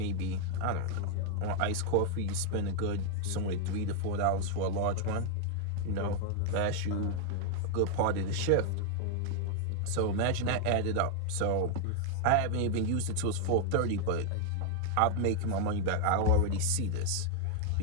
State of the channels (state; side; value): different; both; correlation 0.00